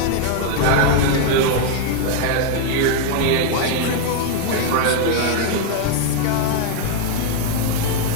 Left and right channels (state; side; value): different; both; correlation 0.00